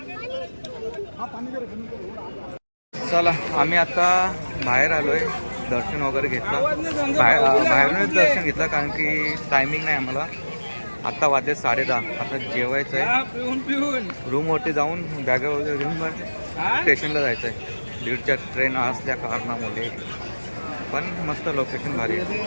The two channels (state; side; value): inverted; both; correlation -1.00